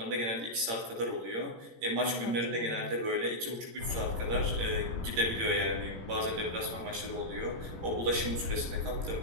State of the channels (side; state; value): left; late; 18 ms